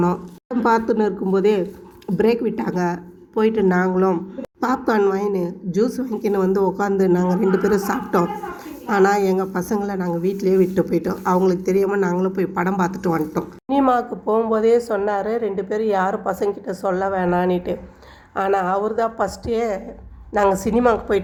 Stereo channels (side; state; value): both; identical; correlation 1.00